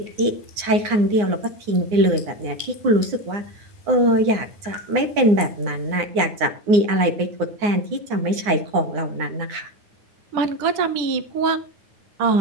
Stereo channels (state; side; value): late; left; 9.7 ms